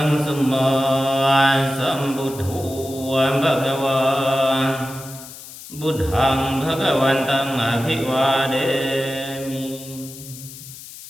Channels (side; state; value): left; noise; hiss, 15 dB below the sound